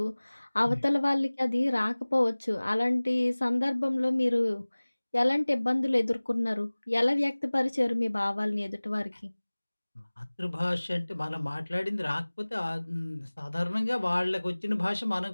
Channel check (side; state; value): both; inverted; correlation -1.00